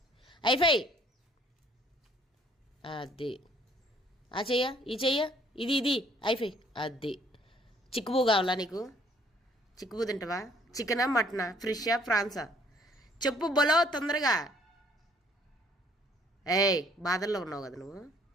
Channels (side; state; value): both; normal; correlation 0.62